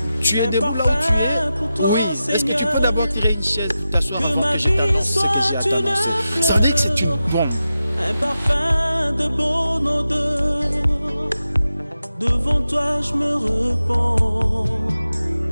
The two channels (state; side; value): inverted; both; correlation -0.92